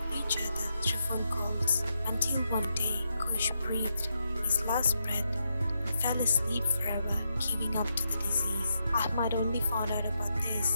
with each other through phone calls until one day Kush breathed his last breath and fell asleep forever, giving up to the disease. Ahmad only found out about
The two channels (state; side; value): inverted; both; correlation -0.82